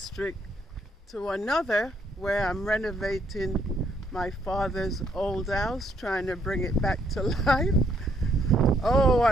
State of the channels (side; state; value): both; normal; correlation 0.71